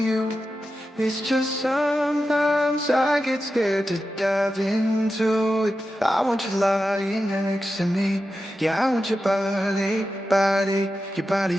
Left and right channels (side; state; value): both; normal; correlation 0.91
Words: It's just sometimes I get scared to dive into it. I want you lying next to me. Yeah, I want your your body